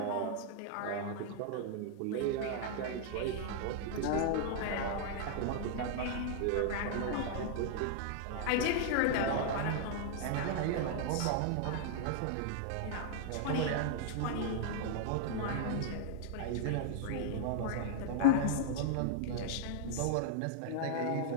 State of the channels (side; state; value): both; different; correlation 0.00